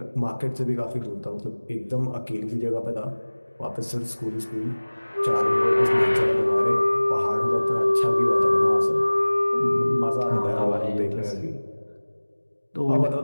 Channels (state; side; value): inverted; both; correlation -1.00